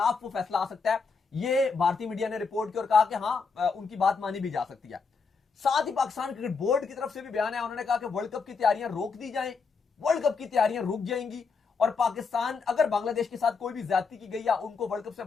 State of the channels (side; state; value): right; quieter; 5.0 dB